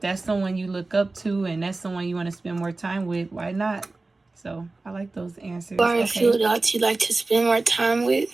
someone you look up to and that's someone you want to spend more time with, why not? So I like those answers. Or a few adults you like to spend more time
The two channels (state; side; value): quieter; left; 3.3 dB